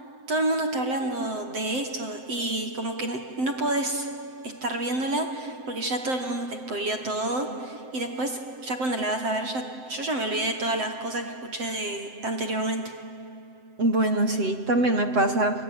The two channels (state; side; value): late; left; 7.8 ms